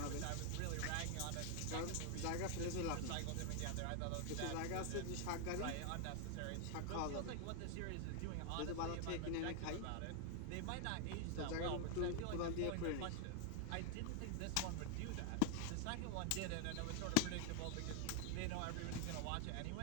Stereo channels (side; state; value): both; different; correlation 0.00